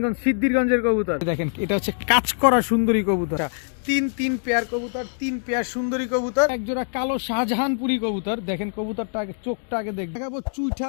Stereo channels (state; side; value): silent; right; digital silence